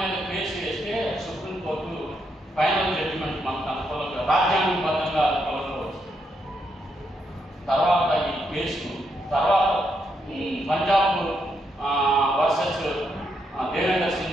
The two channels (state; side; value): normal; both; correlation 0.79